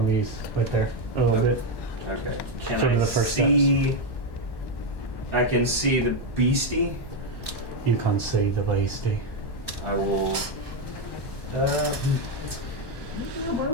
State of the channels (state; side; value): late; right; 1.1 ms